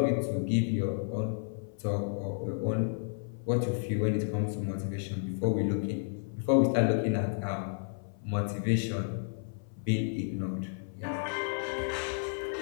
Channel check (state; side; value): silent; right; 56 dB below the other